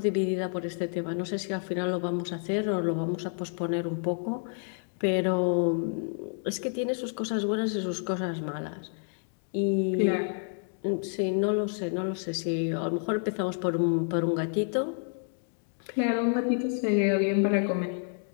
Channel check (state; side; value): silent; right; 56 dB below the other